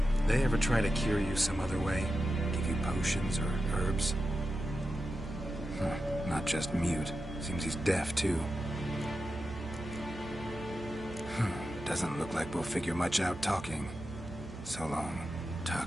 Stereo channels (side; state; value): right; noise; hum, 14 dB below the sound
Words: They ever try to cure you some other way? Give you potions or herbs? Not just mute. Seems he's deaf, too. Doesn't look like we'll figure much out talking. So long.